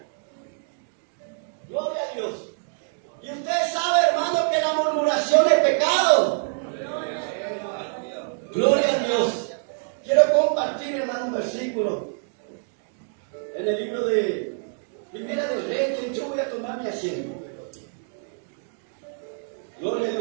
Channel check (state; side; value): silent; left; 61 dB below the other